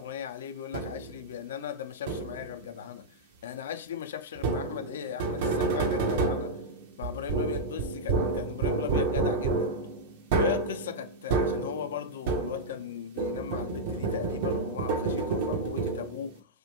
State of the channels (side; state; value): both; normal; correlation -0.07